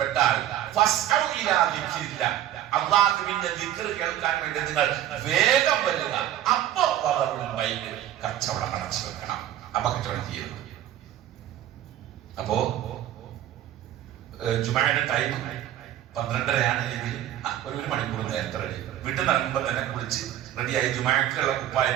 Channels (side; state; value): left; quieter; 12.1 dB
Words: ഫസ്ഔ ഇലാ ദിക്രില്ലാഹ്, അല്ലാഹുവിന്റെ ദിക്ർ കേൾക്കാൻ വേണ്ടി നിങ്ങൾ വേഗം വരിക. അപ്പോ കച്ചവടം അടച്ചു വെക്കണം. അപ്പൊ കച്ചവടം ചെയ്യരുത്. അപ്പോ ജുമായുടെ ടൈം 12:30 എങ്കിൽ ഒരു മണിക്കൂർ നേരത്തെ റെഡി. വീട്ടിൽ നിന്ന് ഇറങ്ങുമ്പോൾ തന്നെ കുളിച്ച് റെഡിയായി ജുമാക്കുള്ള